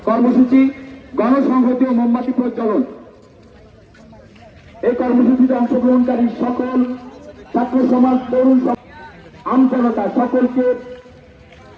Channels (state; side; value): identical; both; correlation 1.00